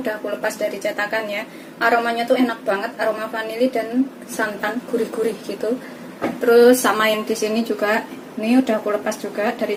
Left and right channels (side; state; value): both; identical; correlation 1.00